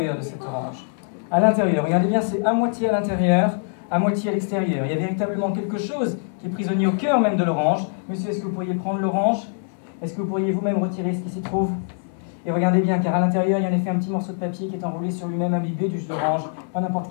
de cette orange, à l'intérieur, regardez bien, c'est à moitié à l'intérieur, à moitié à l'extérieur. Il y a véritablement quelque chose qui est prisonnier au cœur même de l'orange. Monsieur, est-ce que vous pourriez prendre l'orange? Est-ce que vous pourriez vous-même retirer ce qui s'y trouve? Et regardez bien, car à l'intérieur, il y a en effet un petit morceau de papier qui est enroulé sur lui-même, imbibé du jus d'orange. Pas n'importe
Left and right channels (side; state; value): right; silent; 63 dB below the other